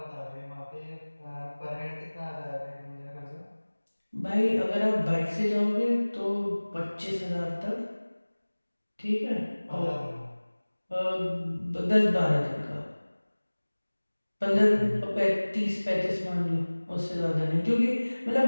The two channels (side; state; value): both; inverted; correlation -1.00